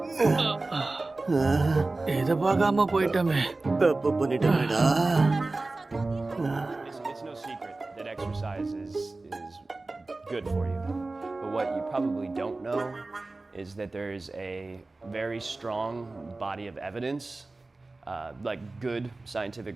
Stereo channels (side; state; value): left; quieter; 3.2 dB